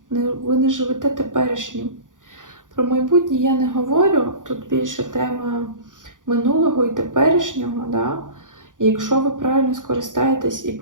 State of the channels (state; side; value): late; left; 0.88 ms